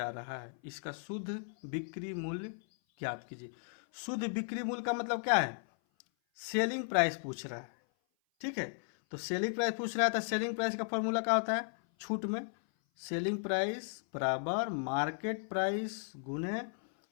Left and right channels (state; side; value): silent; right; 54 dB below the other